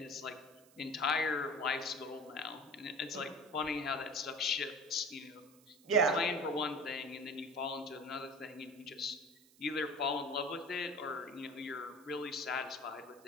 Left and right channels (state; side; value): noise; right; hiss, 26 dB below the sound